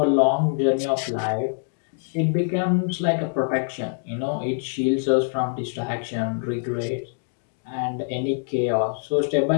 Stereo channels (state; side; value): silent; right; 62 dB below the other